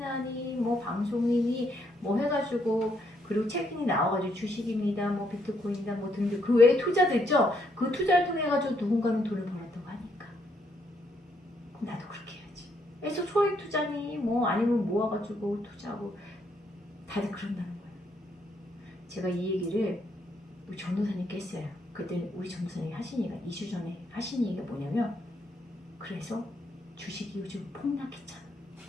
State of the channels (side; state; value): both; normal; correlation 0.74